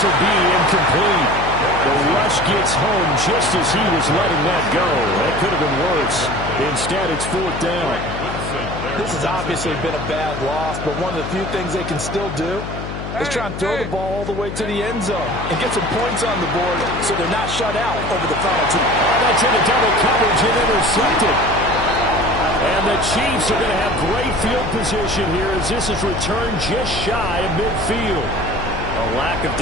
will be incomplete. The rush gets home just as he was letting that go. That could have been worse. Instead, it's 4th down. This has obviously been a bad loss, but one of the few things they can still do is try and throw the ball all the way to the end zone and get some points on the board so they're not shut out over the final 2. Oh, that's into double coverage and intercepted. And the Chiefs are going to have great field position here as this is returned just shy of midfield. A lack of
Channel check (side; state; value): left; noise; hum, 7 dB below the sound